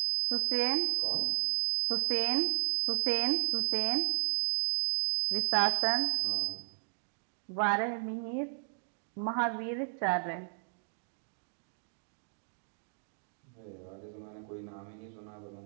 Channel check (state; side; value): silent; left; digital silence